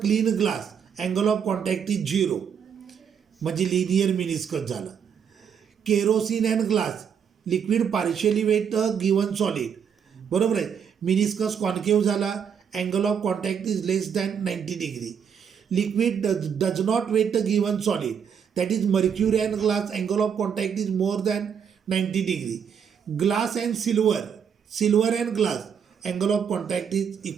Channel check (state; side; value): quieter; left; 7.5 dB